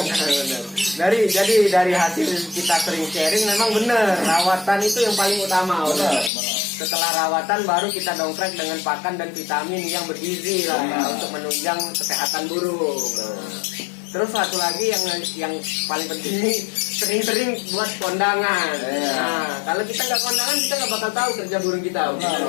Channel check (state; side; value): drops out; right; at 6.3 s